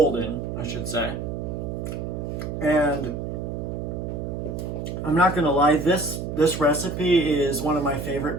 I should say. And I'm not gonna lie, this recipe is one of my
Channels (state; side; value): noise; right; hum, 4 dB below the sound